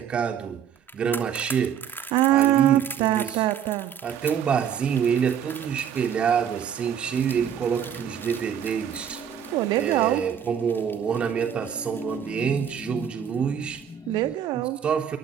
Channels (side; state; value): left; quieter; 8.6 dB